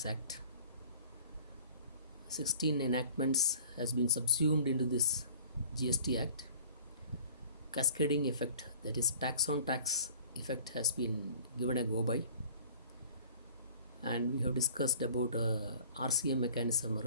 Act, 16 enactments has been subsumed into this GST Act. Cascading effect, that is tax on tax effect, has been given a go by. And we have discussed about RCM mechanism,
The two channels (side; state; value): both; inverted; correlation -0.49